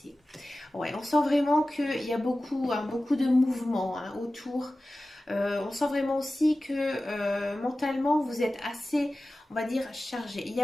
Ouais, on sent vraiment qu'il y a beaucoup, hein, beaucoup de mouvements hein, autour. On sent vraiment aussi que mentalement vous êtes assez, on va dire, chargé. Il y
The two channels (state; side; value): normal; both; correlation 0.96